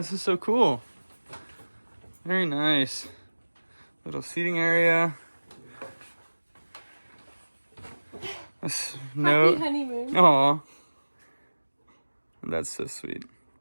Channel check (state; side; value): inverted; both; correlation -1.00